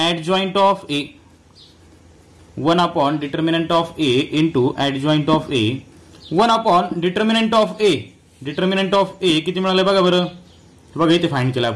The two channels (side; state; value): both; identical; correlation 1.00